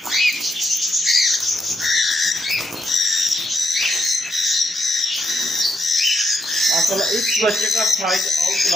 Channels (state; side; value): normal; both; correlation 0.80